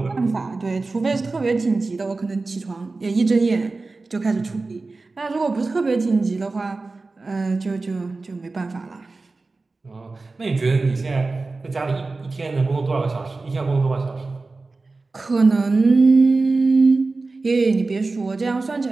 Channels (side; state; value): left; quieter; 3.6 dB